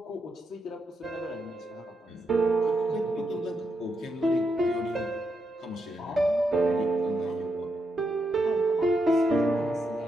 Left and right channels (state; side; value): normal; both; correlation 0.82